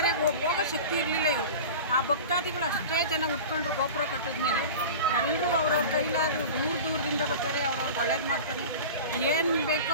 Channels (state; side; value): inverted; both; correlation -0.32